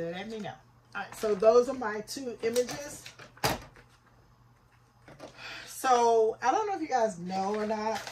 me know. All right, so those are my two images. So I don't know if you guys know or not,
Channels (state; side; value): identical; both; correlation 1.00